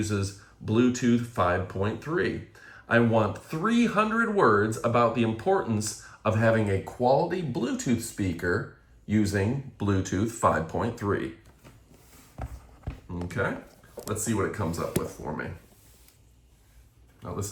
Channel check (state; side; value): identical; both; correlation 1.00